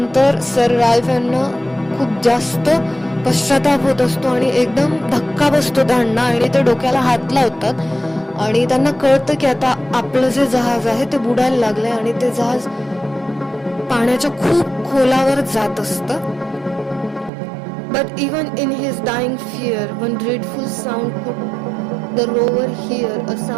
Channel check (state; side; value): drops out; left; at 17.3 s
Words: सर राल्फ यांना खूप जास्त पश्चाताप होत असतो आणि एकदम धक्का बसतो त्यांना आणि ते डोक्याला हात लावतात आणि त्यांना कळतं की आता आपलं जे जहाज आहे ते बुडायला लागलंय आणि ते जहाज पाण्याच्या खूप खोलावर जात असतं. But even in his dying fear, one dreadful sound could the rover hear, a